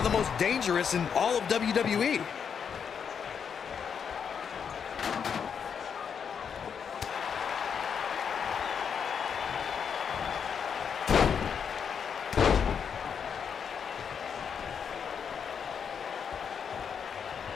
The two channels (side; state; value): right; quieter; 7.0 dB